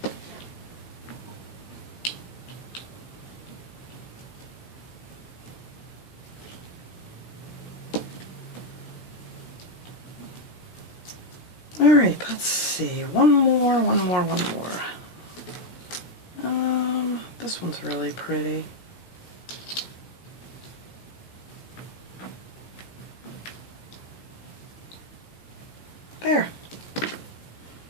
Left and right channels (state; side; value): late; right; 17 ms